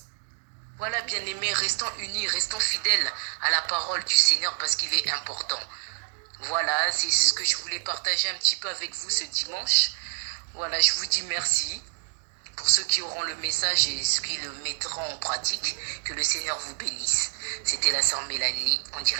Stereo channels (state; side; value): silent; left; 60 dB below the other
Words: Voilà, bien aimé, restons unis, restons fidèles à la parole du Seigneur parce qu'il est important. Voilà, c'est ce que je voulais partager un petit peu avec vous ce dimanche. Voilà, je vous dis merci pour ceux qui auront le message et ceux qui le mettront en pratique. Que le Seigneur vous bénisse. C'était la sœur Mélanie en